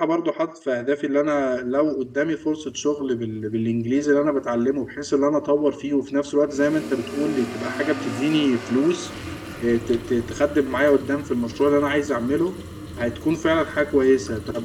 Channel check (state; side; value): identical; both; correlation 1.00